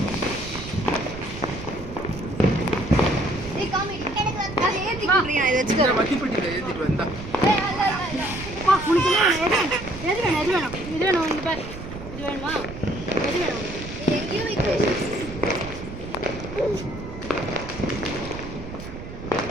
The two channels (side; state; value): right; noise; rumble, 11 dB below the sound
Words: ஏய் காமி எனக்கு வந்து ஏத்தி குடுறீங்க இத இந்த வெச்சுக்கோ. மத்திப்பட்டில ஏத்திட்டு வந்தா. ஏய் அல்ல அல்ல பா உனக்கு எது வேணும் இது வேணும் இங்க பாரு. இது வேணுமா எது வேணும் எங்கேயோ வைக்கிறேன்.